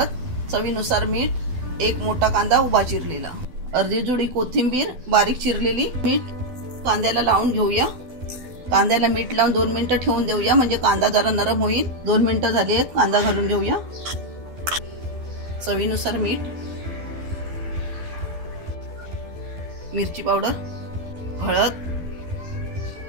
चवीनुसार मीठ, एक मोठा कांदा उभा चिरलेला, अर्धी जुडी कोथिंबीर बारीक चिरलेली, मीठ कांद्याला लावून घेऊया। कांद्याला मीठ लावून 2 मिनिटं ठेवून देऊया, म्हणजे कांदा जरा नरम होईल। 2 मिनिटं झाली आहेत, कांदा घालून घेऊया। चवीनुसार मीठ, मिरची पावडर, हळद,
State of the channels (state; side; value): late; left; 12 ms